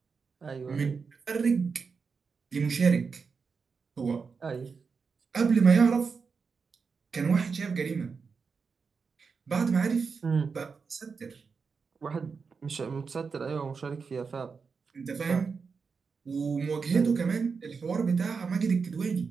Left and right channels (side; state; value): left; quieter; 5.3 dB